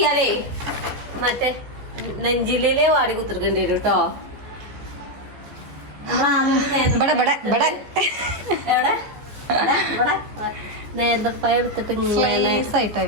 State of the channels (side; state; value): left; late; 14 ms